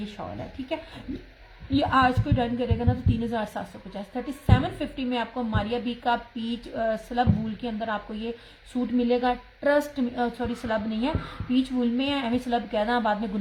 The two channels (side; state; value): both; identical; correlation 1.00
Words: शॉल है, ठीक है। ये आज कोई डन करेगा ना तो 3750, 3750 में आपको मारिया बी का पीच स्लब वूल के अंदर आपको ये सूट मिलेगा। ट्रस्ट, सॉरी स्लब नहीं है, पीच वूल में है, एवं स्लब कहना बाद में